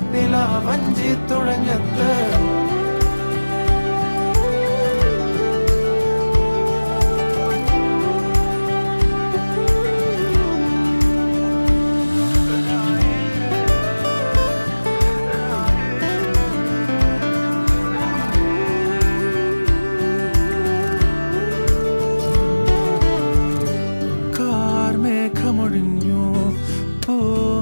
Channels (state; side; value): inverted; both; correlation -1.00